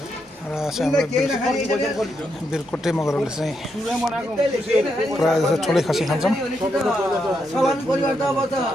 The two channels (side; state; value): right; noise; rumble, 30 dB below the sound